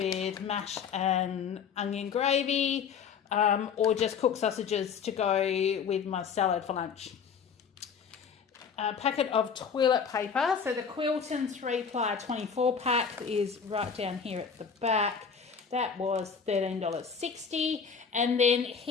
mash and onion gravy, or just cooked sausages to go with my salad for lunch. A packet of toilet paper. So the Quilton 3-ply 24 pack is right down here at the back. That was $13.60. And then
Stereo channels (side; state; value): right; quieter; 6.4 dB